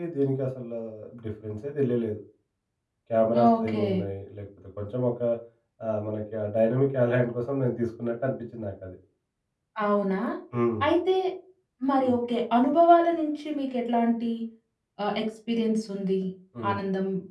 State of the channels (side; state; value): both; identical; correlation 1.00